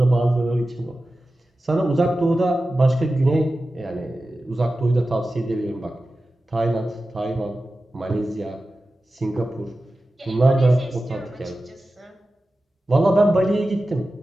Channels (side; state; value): both; normal; correlation 0.94